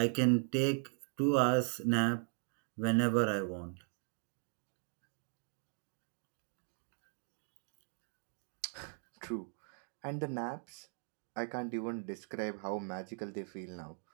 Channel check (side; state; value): left; silent; 52 dB below the other